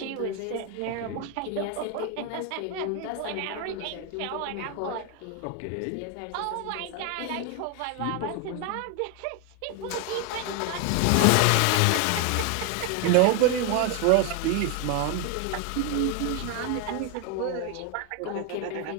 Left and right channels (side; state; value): both; different; correlation 0.01